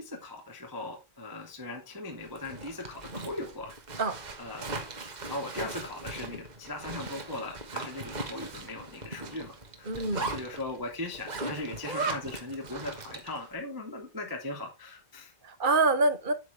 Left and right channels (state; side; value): late; left; 2.0 ms